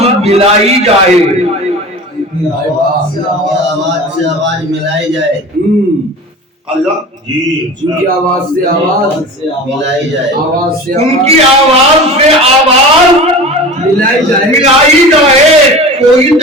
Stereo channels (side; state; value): both; normal; correlation 0.34